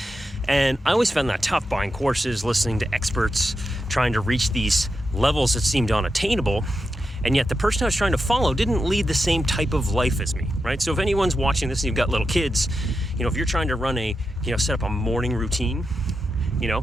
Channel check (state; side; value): normal; both; correlation 0.88